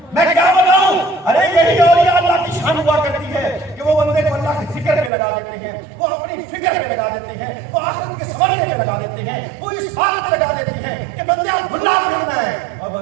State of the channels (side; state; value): left; drops out; at 5.1 s